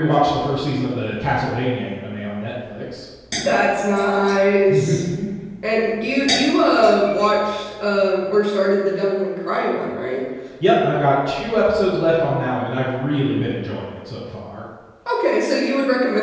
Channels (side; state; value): both; identical; correlation 1.00